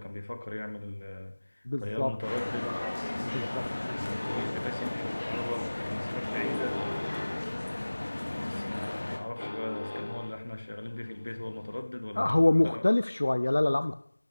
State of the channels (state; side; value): inverted; both; correlation -1.00